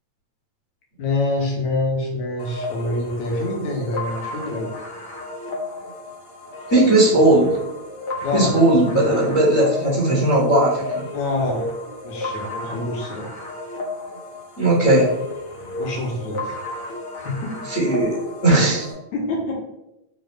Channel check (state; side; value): late; right; 9.0 ms